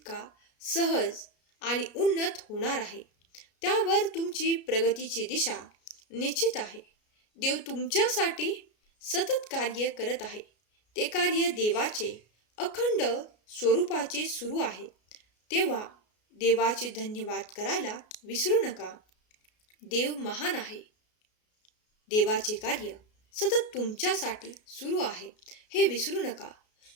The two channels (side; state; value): right; late; 33 ms